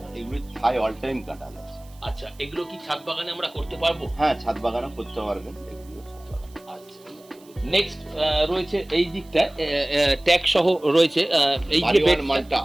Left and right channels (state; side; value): noise; right; hiss, 27 dB below the sound